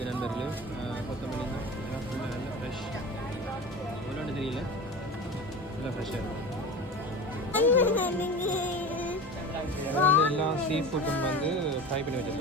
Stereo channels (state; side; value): normal; both; correlation 0.31